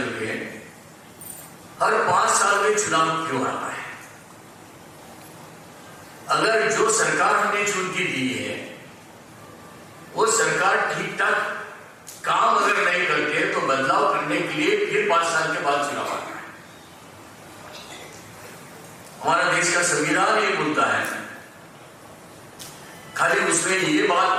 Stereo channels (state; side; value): identical; both; correlation 1.00